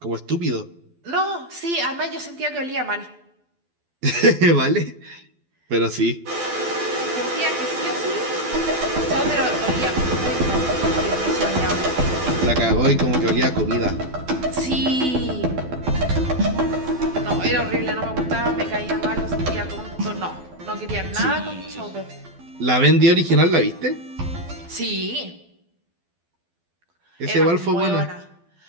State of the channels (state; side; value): late; left; 12 ms